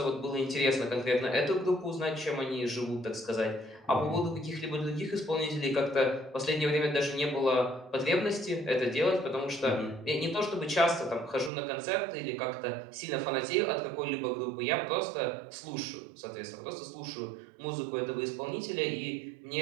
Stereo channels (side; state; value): left; drops out; at 11.5 s